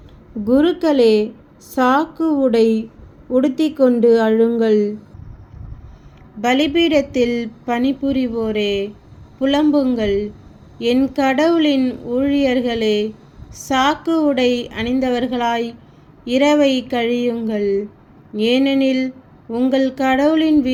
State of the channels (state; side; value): identical; both; correlation 1.00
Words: குருக்களே, சாக்கு உடை உடுத்திக்கொண்டு அழுங்கள். பலிபீடத்தில் பணிபுரிவோரே, புலம்புங்கள். என் கடவுளின் ஊழியர்களே, சாக்கு உடை அணிந்தவர்களாய் இரவை கழியுங்கள். ஏனெனில் உங்கள் கடவுளின்